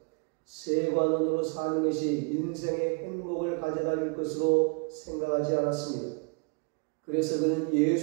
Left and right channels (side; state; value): left; quieter; 33.4 dB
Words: 세관원으로 사는 것이 인생의 행복을 가져다 줄 것으로 생각하지 않았습니다. 그래서 그는